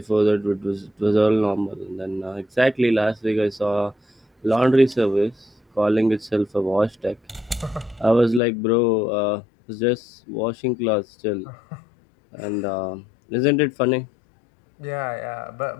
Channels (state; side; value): drops out; right; at 8.4 s